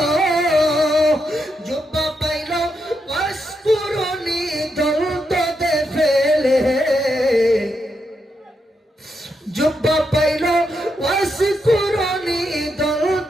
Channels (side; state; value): both; normal; correlation 0.82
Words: জুব্বা পাইল ওয়াসকুরুনি দলদে ফেলে, জুব্বা পাইল ওয়াসকুরুনি